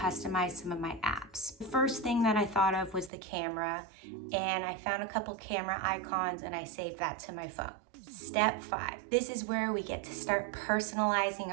some of my apps. The first thing that I thought of was the camera, and I found a couple camera icons and I saved that to my phone. Step 5. This is where we get to start personalizing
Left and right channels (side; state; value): left; drops out; at 3.1 s